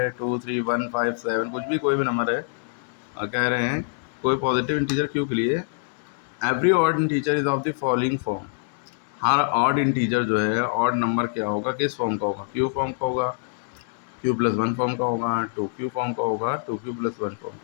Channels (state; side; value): silent; right; 61 dB below the other